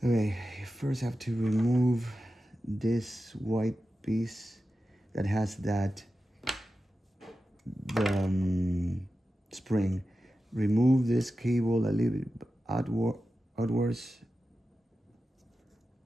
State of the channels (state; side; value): normal; both; correlation 0.92